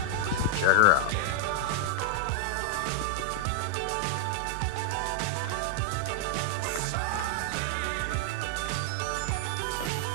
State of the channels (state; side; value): different; both; correlation 0.00